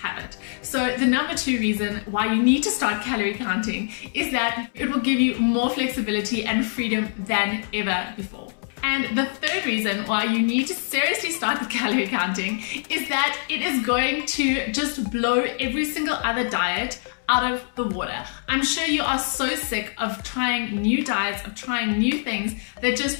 it. So the number two reason why you need to start calorie counting is that it will give you more flexibility and freedom than ever before. And the third reason why you need to seriously start with calorie counting is that it is going to just blow every single other diet out of the water. I'm sure you are so sick of trying new diets, of trying new things that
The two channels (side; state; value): right; silent; 62 dB below the other